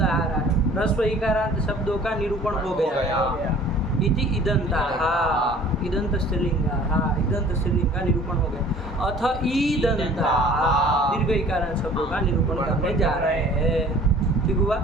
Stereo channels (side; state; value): both; normal; correlation 0.49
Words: आ रहा है। ह्रस्व इकारांत शब्दों का निरूपण हो गया। इति इदंता, हाँ इदंत स्त्रीलिंग, हाँ इदंत स्त्रीलिंग का निरूपण हो गया। अथ ईदंता, दीर्घ इकारांत शब्दों का निरूपण करने जा रहे हैं। ठीक हुआ?